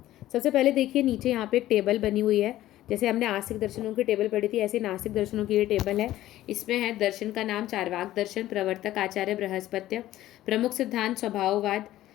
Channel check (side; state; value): right; quieter; 14.5 dB